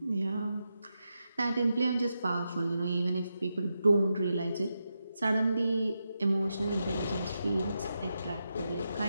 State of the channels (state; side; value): inverted; both; correlation -0.87